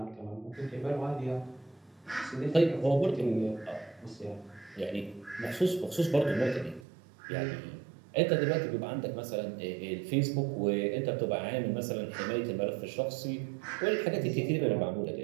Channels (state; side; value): drops out; left; at 6.9 s